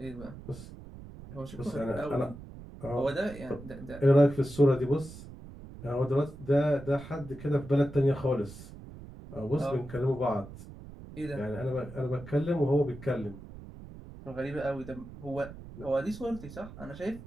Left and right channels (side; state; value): right; noise; rumble, 15 dB below the sound